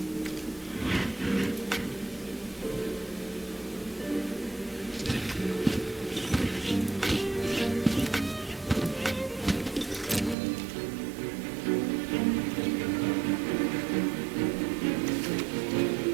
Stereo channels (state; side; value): drops out; left; at 10.4 s